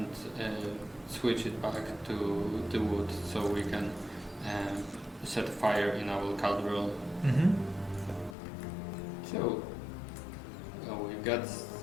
switch it back to the wood, so we can set fire in our cauldron. Mm-hmm. So we got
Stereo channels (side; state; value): right; drops out; at 8.3 s